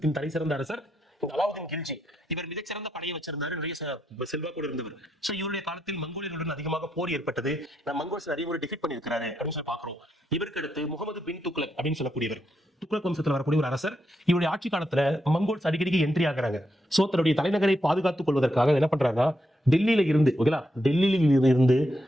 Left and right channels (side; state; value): both; normal; correlation 0.81